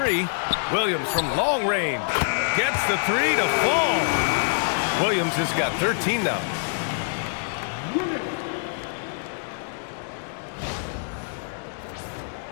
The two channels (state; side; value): silent; right; digital silence